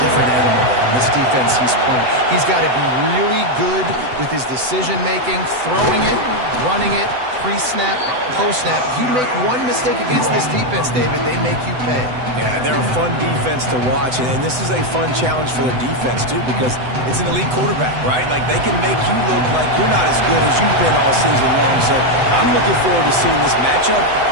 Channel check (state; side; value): late; left; 7.9 ms